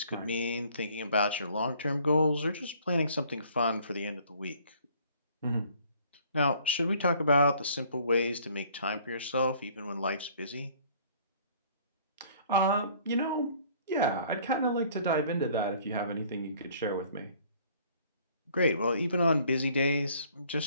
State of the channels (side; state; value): both; inverted; correlation -0.57